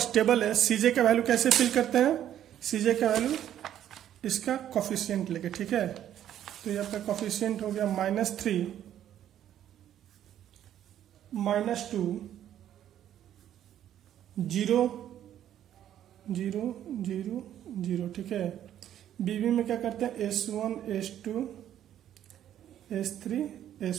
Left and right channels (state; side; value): quieter; left; 11.0 dB